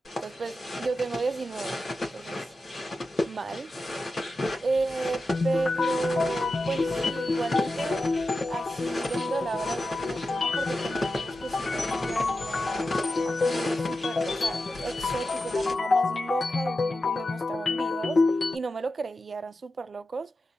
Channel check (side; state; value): both; normal; correlation 0.91